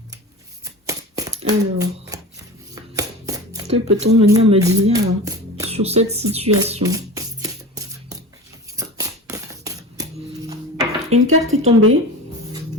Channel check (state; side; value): normal; both; correlation 0.32